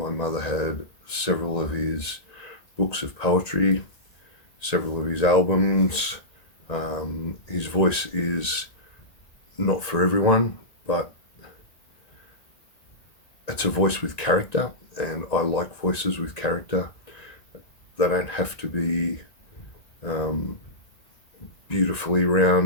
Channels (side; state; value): right; late; 1.9 ms